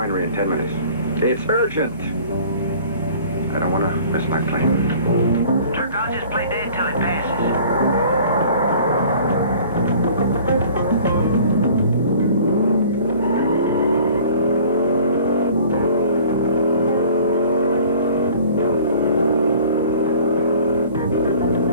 in 10 minutes. It's urgent. I don't want to miss my plane. Turk, I'll just play dead till it passes.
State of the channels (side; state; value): both; inverted; correlation -0.49